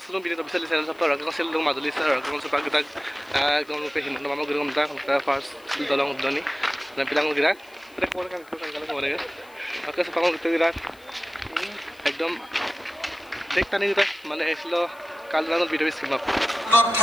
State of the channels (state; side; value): noise; left; hiss, 27 dB below the sound